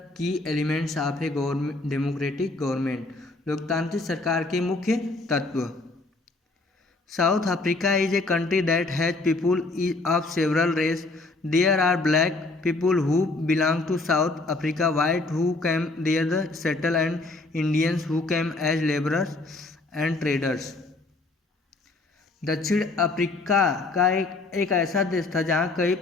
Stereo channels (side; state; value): right; quieter; 3.3 dB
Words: की elements of a government democratic government, लोकतांत्रिक सरकार के मुख्य तत्व। South Africa is a country that has people of several race. There are black people who belong to South Africa, white who came there the settle and Indians who came as labourers and traders. दक्षिण Africa का एक ऐसा देश था जहाँ कई